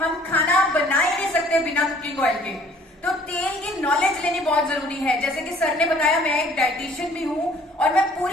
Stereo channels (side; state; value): both; normal; correlation 0.56